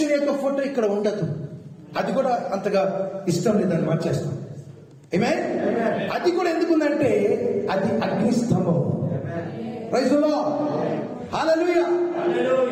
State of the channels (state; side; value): identical; both; correlation 1.00